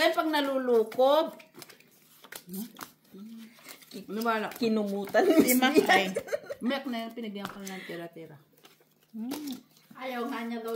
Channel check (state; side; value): identical; both; correlation 1.00